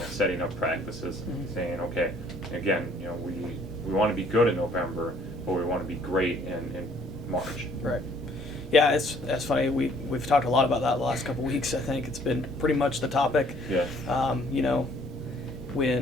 setting up practices, saying, okay, again, we want to be good in November, but we want to be great in March. Right. Yeah, it's funny. We've talked a lot about that the last couple of weeks. I think it's been pretty much the topic. Yeah.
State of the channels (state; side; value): normal; both; correlation 0.60